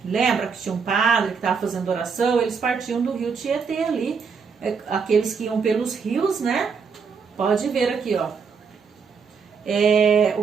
Lembra que tinha um padre que estava fazendo oração? Eles partiam do rio Tietê ali. Aqueles que iam pelos rios, né? Pode ver aqui, ó.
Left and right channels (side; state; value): left; quieter; 5.7 dB